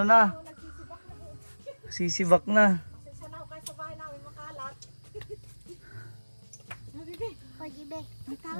Sisibak na. Pasensya na ho kayo sa bahay namin makalat. Habibi, pagibe.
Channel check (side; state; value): both; inverted; correlation -1.00